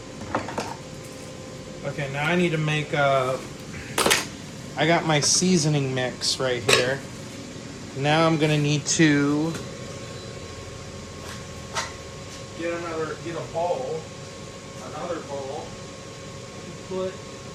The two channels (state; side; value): identical; both; correlation 1.00